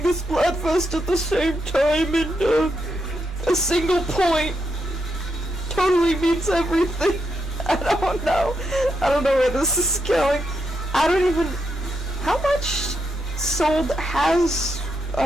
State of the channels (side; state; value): left; noise; rumble, 19 dB below the sound